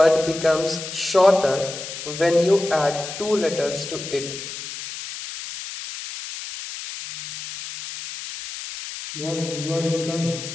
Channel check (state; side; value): noise; left; hiss, 9 dB below the sound